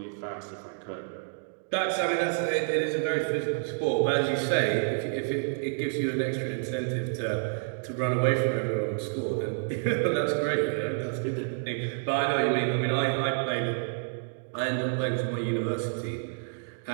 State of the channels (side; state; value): left; silent; digital silence